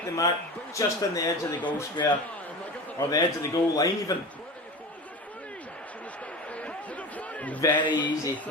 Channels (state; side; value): normal; both; correlation 0.31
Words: the mark just on the edge of the goal square. Or the edge of the goal line even. Very easy